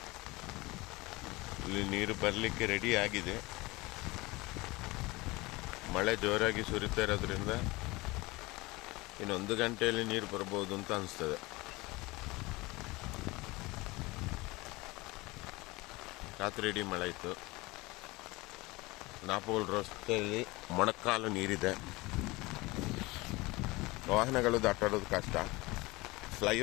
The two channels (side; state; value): right; quieter; 22.4 dB